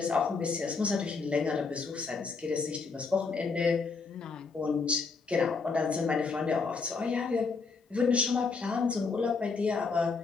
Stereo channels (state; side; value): quieter; right; 4.7 dB